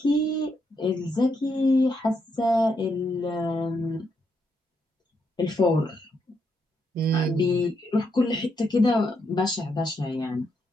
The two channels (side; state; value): both; normal; correlation 0.79